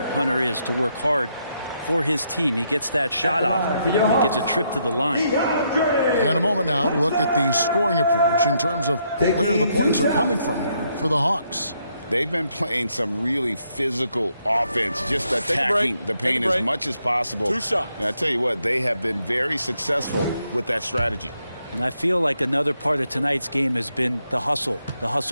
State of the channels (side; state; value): both; inverted; correlation -0.76